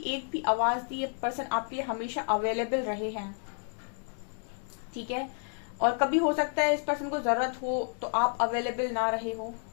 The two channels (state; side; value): silent; right; 57 dB below the other